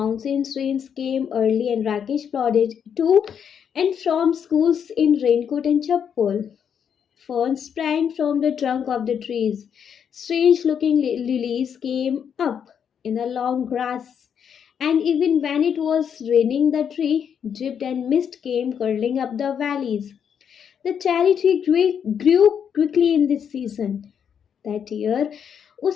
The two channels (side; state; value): right; quieter; 7.8 dB